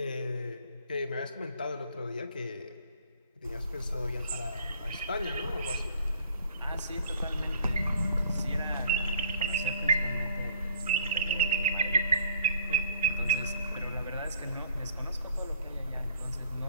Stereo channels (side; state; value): both; inverted; correlation -0.55